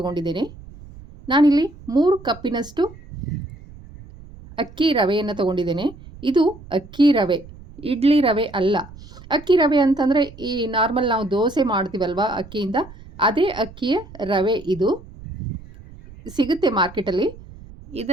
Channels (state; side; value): noise; right; rumble, 19 dB below the sound